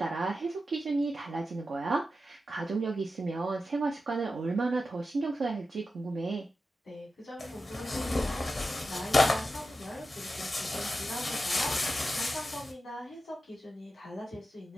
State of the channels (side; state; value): both; normal; correlation 0.91